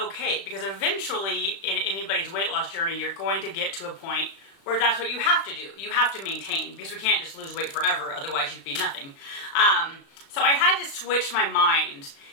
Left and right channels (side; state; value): right; late; 36 ms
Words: because eventually in anybody's weight loss journey, you're going to get to a point where that's what you have to do. You have to maintain, because we can't just lose weight forever, otherwise you'd be nothing. So I had to switch my mind